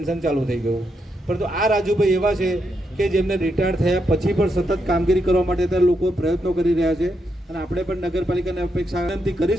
ચાલુ થઈ ગયું. પરંતુ આ રાજુભાઈ એવા છે કે જેમને રિટાયર થયા પછી પણ સતત કામગીરી કરવા માટે ત્યાં લોકો પ્રયત્નો કરી રહ્યા છે. અને આપણે પણ નગરપાલિકાને અપેક્ષા વિનંતી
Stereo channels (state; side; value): normal; both; correlation 0.81